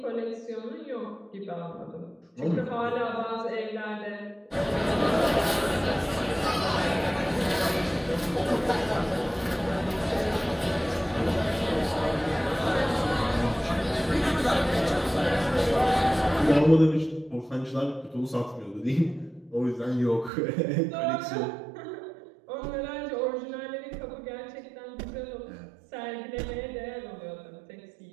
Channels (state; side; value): drops out; left; at 20.3 s